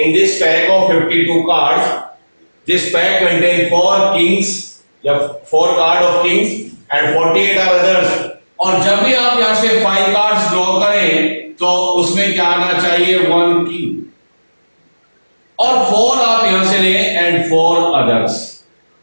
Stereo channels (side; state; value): both; inverted; correlation -1.00